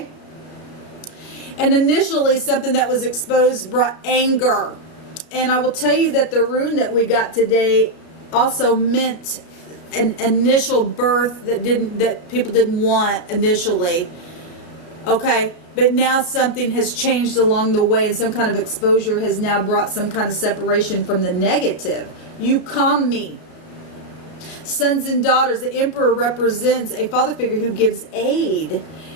And initially, something that was exposed brought anger. And I will tell you that the rune that we got today also meant an initial birth that people didn't want initially. Okay? But now something has changed along the way, and some kind of exposure has now brought some kind of separation from the negative. You calm me. Sons and daughters. The Emperor represents a father figure who gives aid.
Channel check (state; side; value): late; right; 33 ms